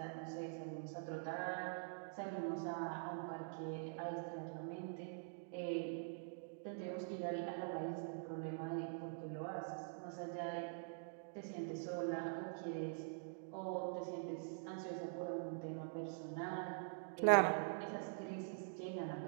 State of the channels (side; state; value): left; silent; digital silence